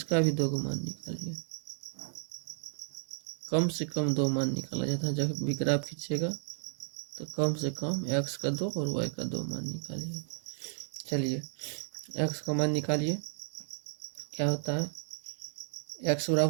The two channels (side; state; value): left; silent; 56 dB below the other